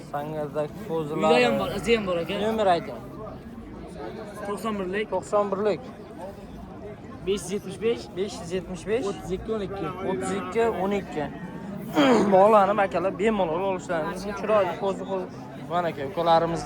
Sangerdagi Uyda qo'zilari. ham bor, izi ham bor aka. Nomer ayting. 91lik 91lik 575 575 32 12. 32 12. Bog'lanib akalar bemalol olishlaringiz chiroyli qo'zi mana aka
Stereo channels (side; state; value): both; identical; correlation 1.00